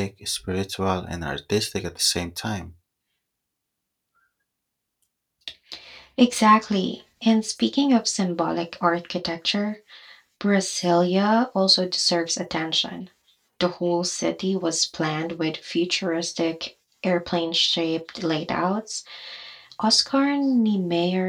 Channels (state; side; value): identical; both; correlation 1.00